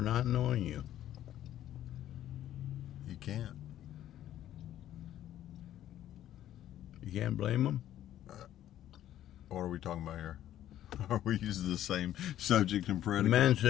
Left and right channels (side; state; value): right; quieter; 12.2 dB